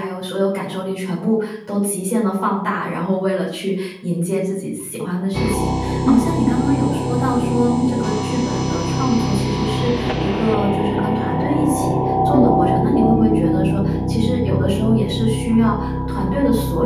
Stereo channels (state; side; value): identical; both; correlation 1.00